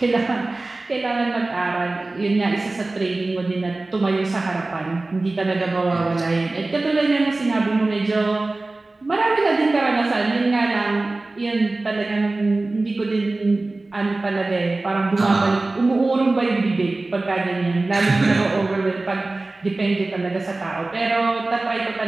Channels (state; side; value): quieter; left; 3.1 dB